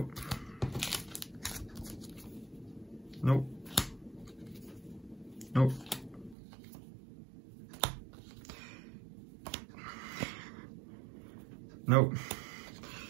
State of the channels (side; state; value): left; drops out; at 6.4 s